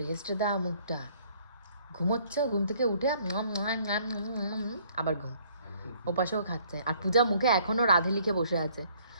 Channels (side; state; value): both; inverted; correlation -0.61